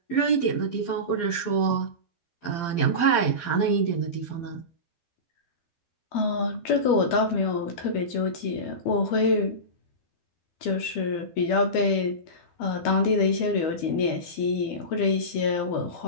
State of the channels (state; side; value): late; right; 12 ms